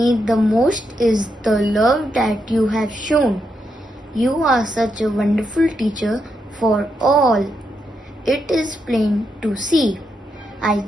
the most is the love that you have shown. You are such a wonderful teacher for all. It is plain to see. I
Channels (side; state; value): both; normal; correlation 0.82